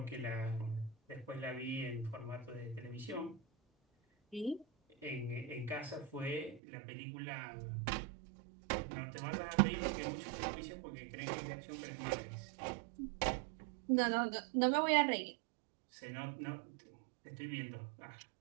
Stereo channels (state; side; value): drops out; left; at 6.6 s